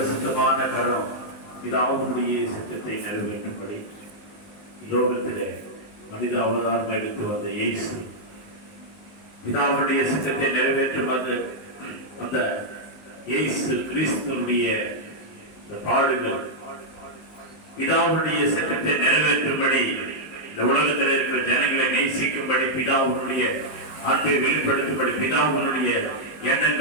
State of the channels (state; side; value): late; right; 19 ms